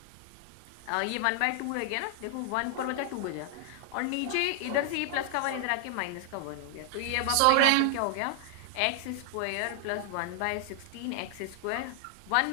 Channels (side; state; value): both; different; correlation 0.00